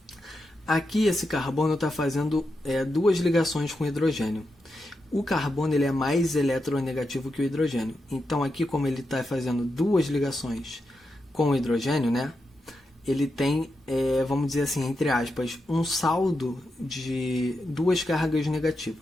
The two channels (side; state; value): both; normal; correlation 0.87